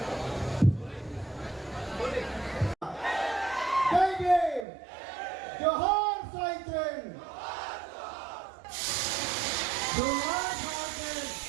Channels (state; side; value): drops out; left; at 4.7 s